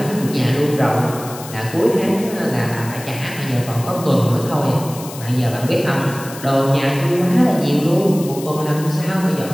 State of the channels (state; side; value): noise; left; hiss, 14 dB below the sound